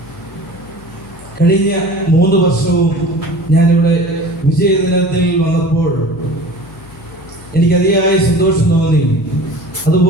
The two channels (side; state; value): left; noise; hum, 22 dB below the sound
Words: കഴിഞ്ഞ 3 വർഷവും ഞാനിവിടെ വിജയദിനത്തിൽ വന്നപ്പോൾ എനിക്ക് അതിയായ സന്തോഷം തോന്നി.